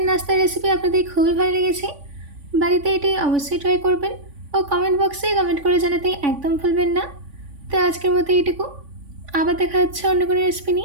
নাস্তার রেসিপি আপনাদের খুবই ভালো লেগেছে। বাড়িতে এটি অবশ্যই ট্রাই করবেন ও কমেন্ট বক্সে কমেন্ট করে জানাতে একদম ভুলবেন না। তো আজকের মতো এইটুকু, আবার দেখা হচ্ছে অন্য কোনো রেসিপি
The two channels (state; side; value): late; left; 3.5 ms